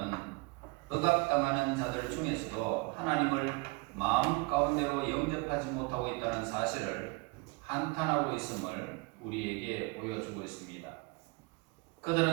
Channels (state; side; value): quieter; left; 27.5 dB